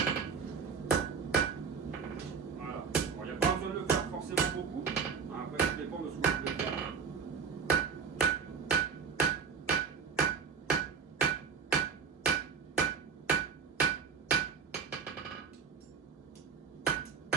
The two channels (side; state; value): left; quieter; 5.9 dB